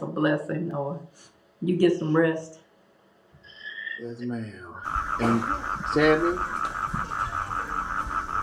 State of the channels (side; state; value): both; identical; correlation 1.00